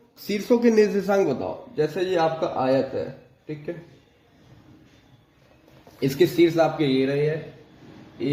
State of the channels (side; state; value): both; identical; correlation 1.00